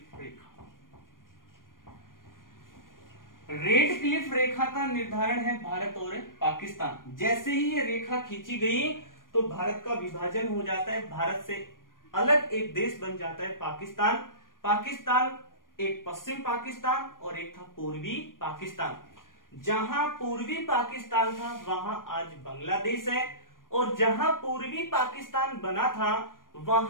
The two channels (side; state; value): right; late; 0.90 ms